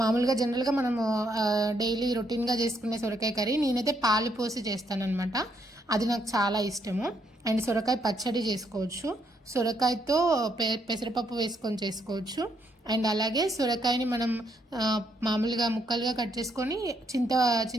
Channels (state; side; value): normal; both; correlation 0.74